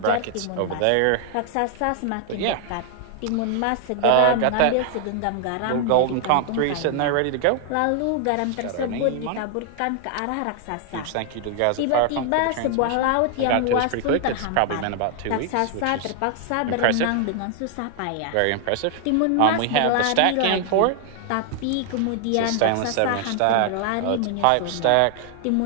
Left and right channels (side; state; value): both; different; correlation 0.00